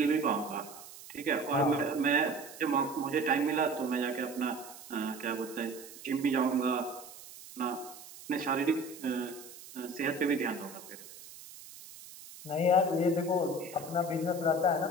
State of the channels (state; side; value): noise; right; hiss, 16 dB below the sound